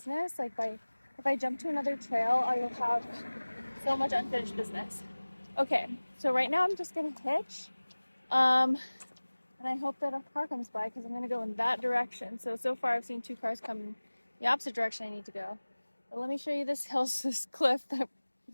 Like if I jump to another trail, I will have so much unfinished business. Okay, so right now I'm just gonna hitch. And I hope that a car comes by because I'm gonna go in that direction. So far I've seen 2 cars come the opposite direction I need to go. But let me show you this hill, this cliff that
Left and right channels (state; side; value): inverted; both; correlation -1.00